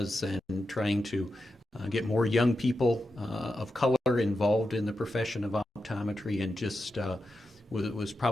and trying to get more young people of color involved in the profession of optometry, and just was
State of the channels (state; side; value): normal; both; correlation 0.89